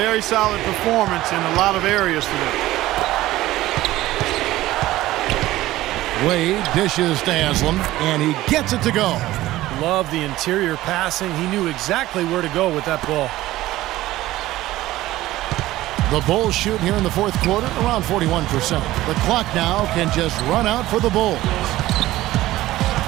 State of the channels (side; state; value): left; quieter; 16.2 dB